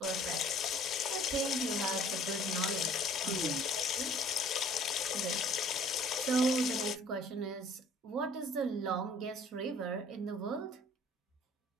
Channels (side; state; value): both; normal; correlation 0.53